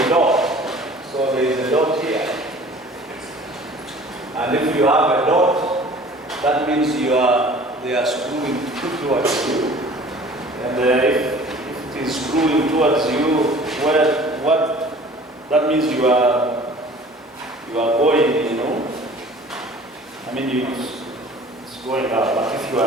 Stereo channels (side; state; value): both; normal; correlation 0.47